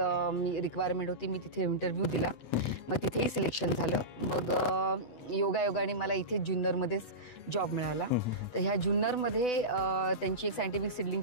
मी रिक्वायरमेंट होती. मी तिथे इंटरव्ह्यू दिला, मग तिथेही सिलेक्शन झालं. मग योगायोगाने मला इथे जुन्नरमध्येच जॉब मिळाला. तर ह्या जुन्नरमध्ये त्यांची एक सायंटिफिक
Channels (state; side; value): late; right; 8.0 ms